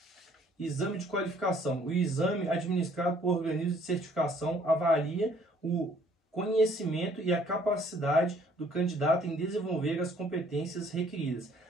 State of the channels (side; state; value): both; normal; correlation 0.60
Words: Exame de qualificação. O exame administrado por organismo de certificação avalia o conhecimento e a capacidade do candidato em desenvolver as competências requeridas.